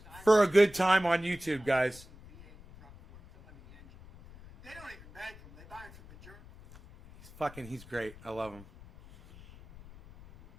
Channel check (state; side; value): noise; left; rumble, 21 dB below the sound